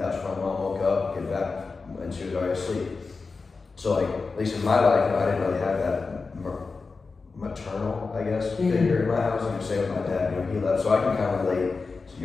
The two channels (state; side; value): quieter; right; 4.3 dB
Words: when my mom woke up, get back, and she was already asleep. So like, at least in my life, I didn't really have that maternal, I guess, figure in my house. Same with my dad, he left, so I can kind of relate to